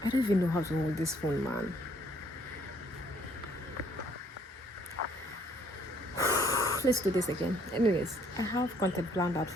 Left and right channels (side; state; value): both; normal; correlation 0.64